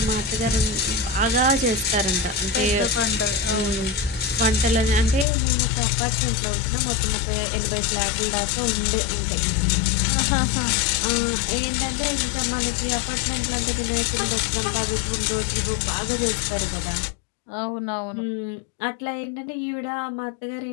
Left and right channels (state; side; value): drops out; right; at 5.2 s